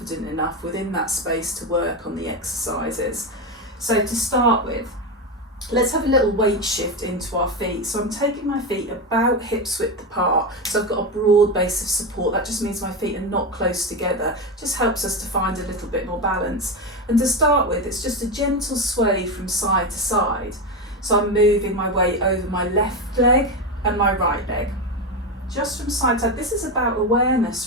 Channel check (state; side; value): normal; both; correlation 0.15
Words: enough within that space to work on the exercises. So to start with, let's have a little weight shift into our feet. So I'm taking my feet about hips width apart, so I've got a broad base of support. That just means my feet are not close together, just helps us to find a little bit more balance. And to start with, it's just a gentle sway from side to side. So I'm moving my weight over my left leg and my right leg, just from side to side. This is about